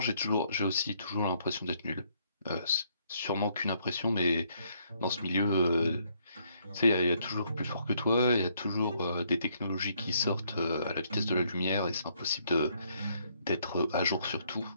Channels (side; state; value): both; inverted; correlation -0.69